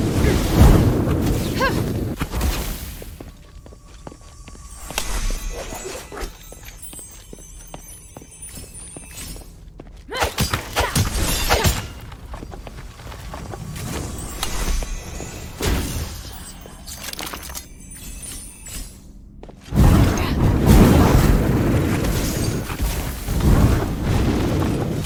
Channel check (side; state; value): both; identical; correlation 1.00